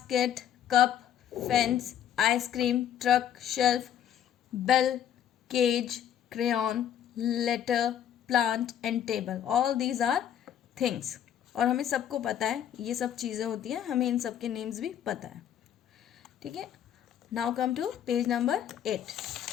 cup, fence, ice cream, truck, shelf, bell, cage, crayon, letter, plant and table. All these are things. और हमें सबको पता है ये सब चीज़ें होती हैं, हमें इन सब के नेम्स भी पता है, ठीक है। Now come to page number 8।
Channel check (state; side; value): quieter; right; 9.9 dB